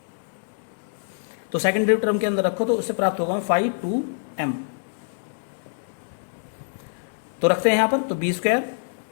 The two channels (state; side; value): silent; right; digital silence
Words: तो सेकंड डिग्री टर्म के अंदर रखो तो उससे प्राप्त होगा 5 2m। तो रखते हैं यहां पर, तो B square